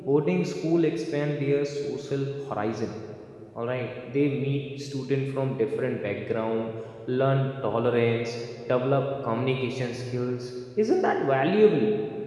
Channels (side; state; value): both; identical; correlation 1.00